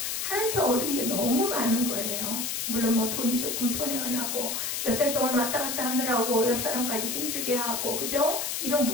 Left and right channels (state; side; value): noise; left; hiss, 2 dB below the sound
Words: 하나님께 얻은 게 너무 많은 거예요. 물론 뭐 돈이 조금 손해가 나고 몇 달 동안 왔다 갔다 하느라고 옆 사람까지 힘들게 하고 그죠? 이런